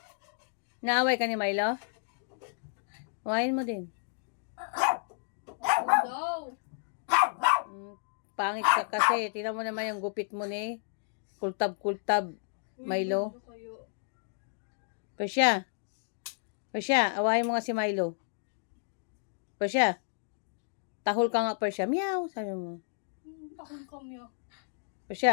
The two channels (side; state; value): right; silent; digital silence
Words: Naaway ka ni Milo? Awayin mo din. No. Pangit ka kasi. Tingnan mo naman yung gupit mo ni. Kultab-kultab. Milo. Persia. Persia, awayin mo nga si Milo. Persia. Tahol ka nga, Persia. Meow, sabi mo. Tahol ka, meow.